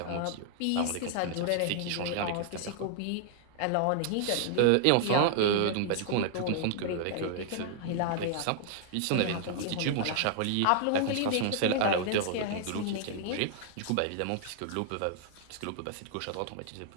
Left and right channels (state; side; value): different; both; correlation -0.01